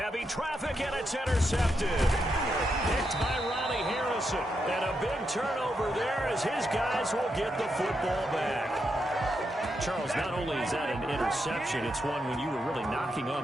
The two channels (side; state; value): both; normal; correlation 0.83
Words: traffic, and it's intercepted. Picked by Ronnie Harrison. And a big turnover there as his guys will get the football back. Charles, not only is that an interception, it's one when you were really knocking